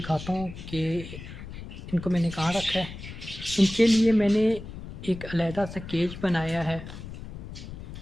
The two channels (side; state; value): left; noise; rumble, 12 dB below the sound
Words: हूँ कि इनको मैंने कहाँ रखा है। इनके लिए मैंने एक अलहदा सा केज बनाया है।